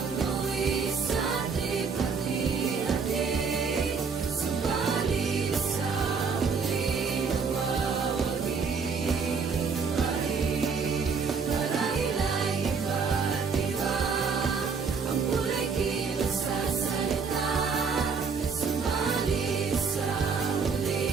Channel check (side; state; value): left; quieter; 5.4 dB